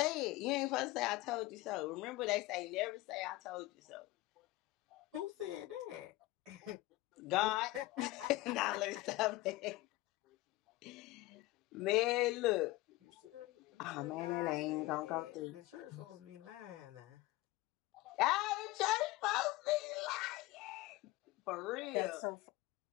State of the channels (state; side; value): quieter; right; 19.3 dB